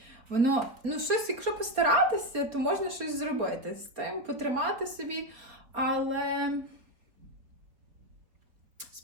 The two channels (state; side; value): late; left; 4.2 ms